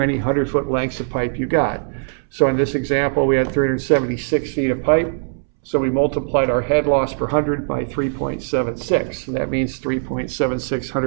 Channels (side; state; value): left; silent; 66 dB below the other